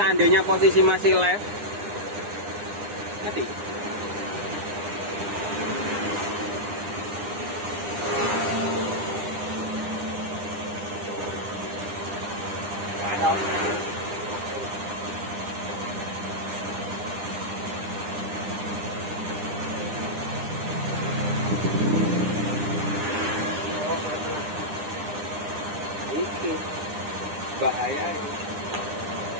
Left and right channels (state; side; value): late; left; 9.9 ms